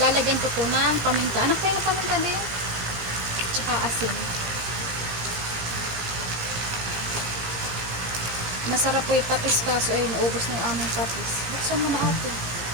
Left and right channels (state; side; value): late; left; 17 ms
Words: ko po ng paminta. Anak, kayo ng paminta din? Tsaka asin. Masarap po yung patis kaso ay naubos na yung aming patis. Buksan mo na ate.